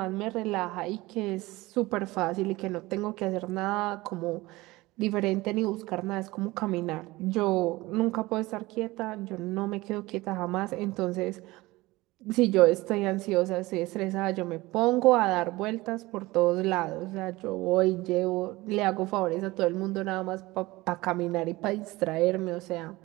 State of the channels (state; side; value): quieter; left; 20.2 dB